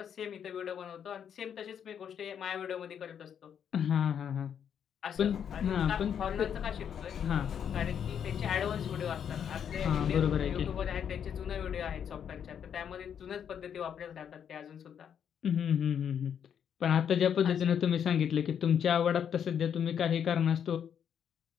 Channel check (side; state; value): right; quieter; 8.3 dB